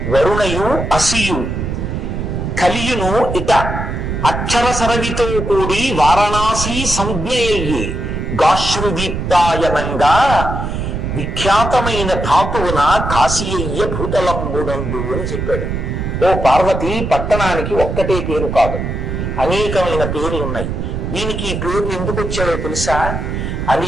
వరుణయు అసియు కలియును ఇట అక్షర సరవితో కూడి వారణాసి సంజ్ఞయ్యే, గాశ్రుదీప్తాయనంగా విఖ్యాతమైన ధాతువున కాశీయ్య భూతలంబునందు అని చెప్పాడు. ఓ పార్వతి, పట్టణానికి ఒక్కటే పేరు కాదు, అనేకమైన పేర్లు ఉన్నాయి. దీనికి ఈ పేర్లు ఎందుకు వచ్చాడో తెలుసా?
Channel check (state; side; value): noise; right; rumble, 3 dB below the sound